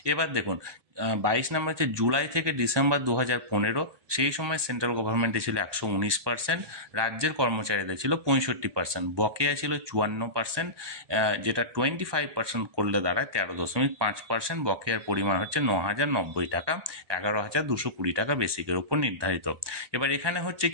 এবার দেখুন 22 নম্বর হচ্ছে জুলাই থেকে ডিসেম্বর 2015, সেই সময় সেন্ট্রাল গভর্নমেন্টে ছিল 119%, রাজ্যের কর্মচারীদের ছিল 65%, বকেয়া ছিল 54%, যেটা 25% করলে দাঁড়ায় 13.5%, বকেয়ার পরিমাণ হচ্ছে 9,090 টাকা, 11,220 টাকা বেসিকের উপর নির্ধারিত। এবার এখানে হচ্ছে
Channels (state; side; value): late; left; 1.2 ms